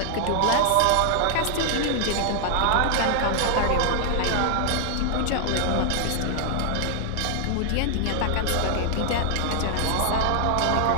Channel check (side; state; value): both; different; correlation 0.00